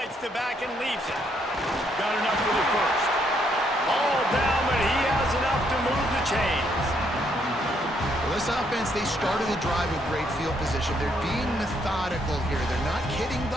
the back and leaves it. Got enough for the 1st. All down, but he has enough to move the chains. Well, this offense, they started the drive with great field position. They're being methodical here. They're not hitting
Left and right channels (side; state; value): both; normal; correlation 0.72